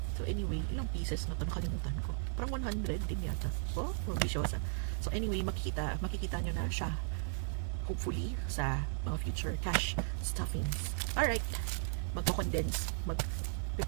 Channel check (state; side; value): silent; left; 54 dB below the other